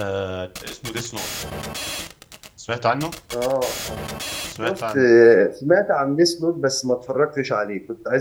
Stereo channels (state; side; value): identical; both; correlation 1.00